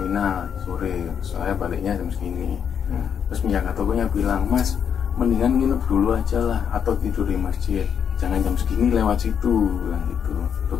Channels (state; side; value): quieter; right; 7.8 dB